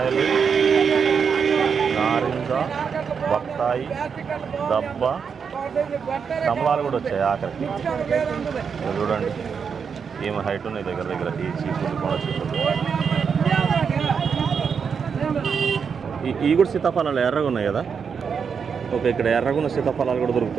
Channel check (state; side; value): quieter; left; 6.4 dB